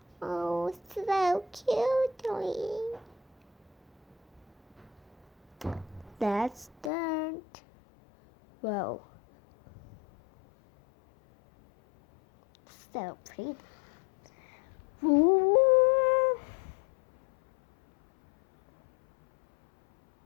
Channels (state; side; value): drops out; right; at 6.9 s